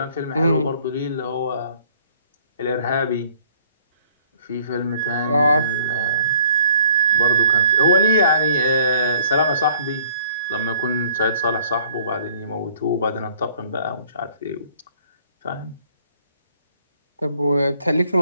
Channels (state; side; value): inverted; both; correlation -0.58